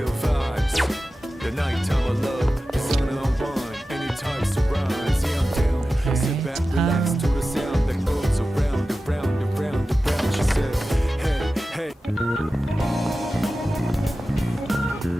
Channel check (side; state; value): both; normal; correlation 0.94